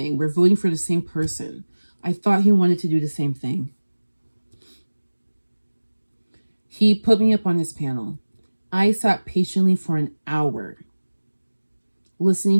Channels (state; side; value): inverted; both; correlation -1.00